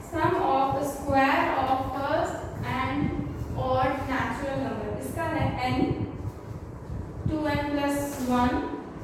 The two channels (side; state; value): both; identical; correlation 1.00